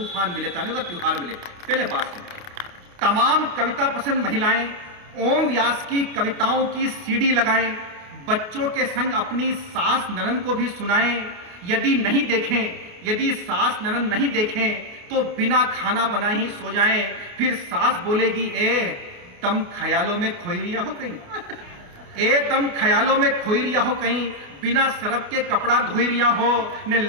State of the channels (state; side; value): late; left; 28 ms